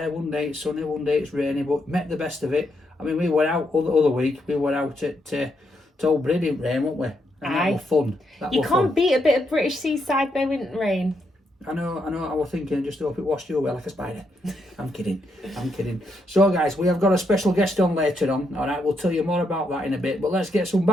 One day it's sunny, one day it's rainy, but met the best of it. I mean, we were out other week, we were out at Old Brady in rain, weren't we? And that was fun. You can't beat a bit of British seaside though, in rain. I know, I was thinking, just hope it washed you away like a spider. I'm kidding. So guys, we have got a special guest on later on, alright, we'll tell you more about that in a bit, but let's get some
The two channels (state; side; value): normal; both; correlation 0.79